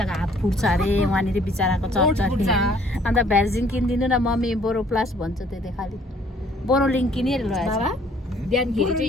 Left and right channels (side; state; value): both; normal; correlation 0.60